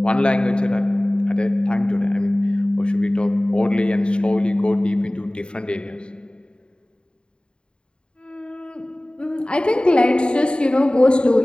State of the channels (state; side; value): late; right; 0.052 ms